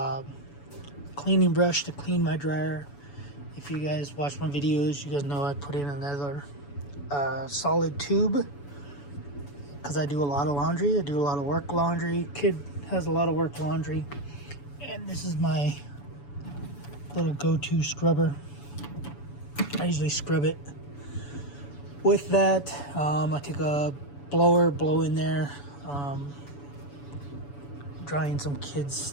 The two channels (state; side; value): late; right; 7.0 ms